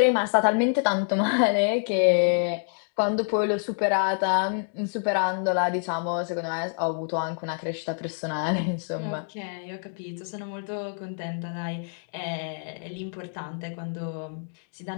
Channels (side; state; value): right; silent; digital silence